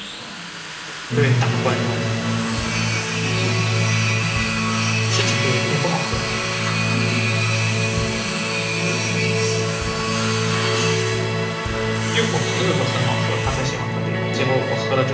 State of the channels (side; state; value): both; identical; correlation 1.00